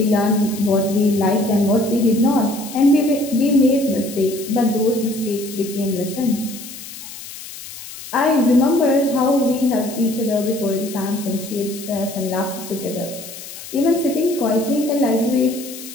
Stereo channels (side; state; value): left; noise; hiss, 13 dB below the sound